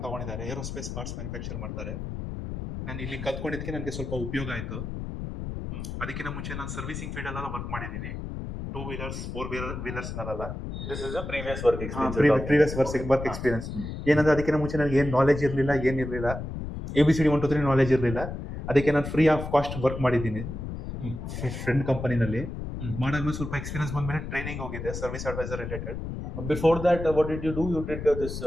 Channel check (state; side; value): noise; left; rumble, 7 dB below the sound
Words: ತಗೊಂಡಿದ್ದಾರೆ. ಏರೋಸ್ಪೇಸ್ ಪಾರ್ಟ್ಸ್ ಮ್ಯಾನುಫ್ಯಾಕ್ಚರ್ ಮಾಡ್ತಾರೆ. ನಾನು ಇಲ್ಲಿ ಕಲ್ತ್ಕೊಂಡಿದ್ದಕ್ಕೆ ನನಗೆ ಸ್ವಲ್ಪ ಉಪಯೋಗ ಆಯಿತು. ಅದಕ್ಕಿಂತ ಮುಂಚೆ ನಾನು ಸರ್ವಿಸಿಂಗ್ ಫೀಲ್ಡ್ ಅಲ್ಲೆಲ್ಲ ವರ್ಕ್ ಮಾಡಿದ್ದೀನಿ. 2 ವೀಲರ್ಸ್ 4 ವೀಲರ್ಸ್ ನಲ್ಲ. This is a previous work experience. Previous work experience. ಏನಂದ್ರೆ ಅದಕ್ಕಿಂತ ಮುಂಚೆ ನನಗೆ ಏನು ನಾಲೆಜ್ ಇರಲಿಲ್ಲ, ಏನಿರಲಿಲ್ಲ. ABCD 1 2 3 ನಾಲೆಜ್ ಇರಲಿಲ್ಲ. ಅದಕ್ಕೆ ನಾನು ಫ್ರೀ ಆಫ್ ಕಾಸ್ಟ್ ವರ್ಕ್ ಮಾಡಿದ್ದೀನಿ ಫ್ರೆಂಡ್ ಕಂಪನಿನಲ್ಲಿ. ಮಾಡಾದ್ಮೇಲೆ ಸ್ವಲ್ಪ ಎಕ್ಸ್ಪೀರಿಯನ್ಸ್ ಬಂದ್ಮೇಲೆ ಟ್ರೈನಿಂಗ್ ಹೋಗಿದೆ service advisor related. Before that, what did you do? You did this